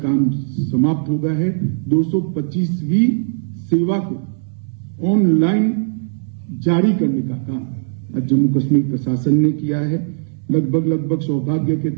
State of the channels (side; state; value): left; silent; digital silence